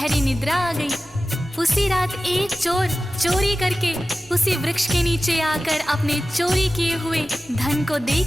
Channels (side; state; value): both; normal; correlation 0.95